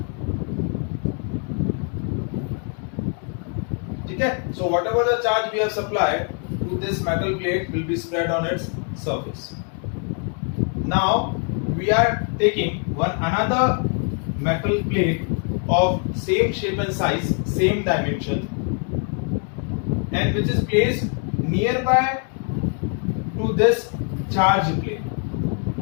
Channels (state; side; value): quieter; right; 39.8 dB